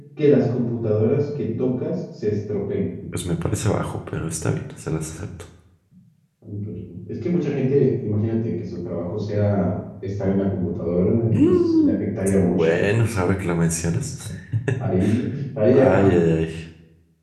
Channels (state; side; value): identical; both; correlation 1.00